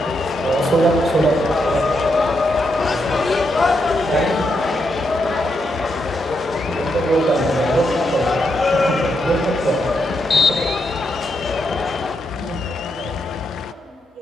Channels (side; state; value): both; normal; correlation 0.82